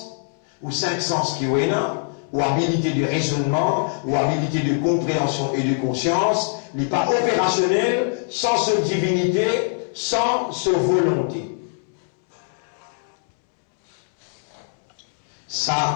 ou 5 sens qui est là, ou habilité de raisonnement, ou habilité de compréhension et de conscience, il n'est pas opérationnel sans sa divinité, sans sa volonté.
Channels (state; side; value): silent; right; 64 dB below the other